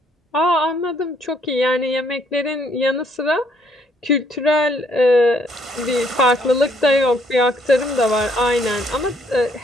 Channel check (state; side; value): normal; both; correlation 0.67